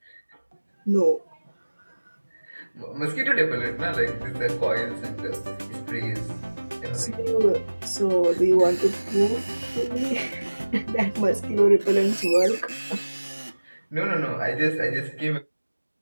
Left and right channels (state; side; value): inverted; both; correlation -1.00